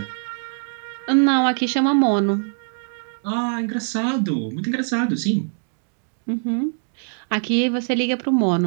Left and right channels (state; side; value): silent; left; 64 dB below the other